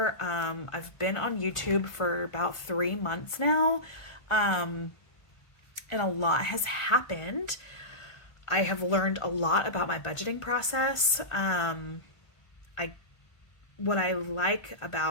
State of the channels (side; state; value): right; late; 1.4 ms